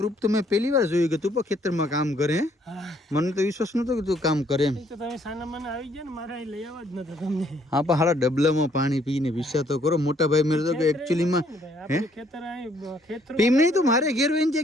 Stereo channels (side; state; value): both; normal; correlation 0.66